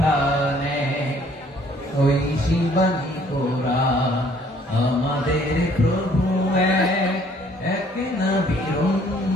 ওই শিবানী কোরআন। আমাদের প্রভু এক নবীর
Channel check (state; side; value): normal; both; correlation 0.60